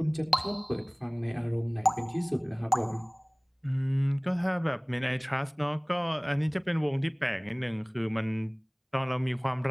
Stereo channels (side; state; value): both; identical; correlation 1.00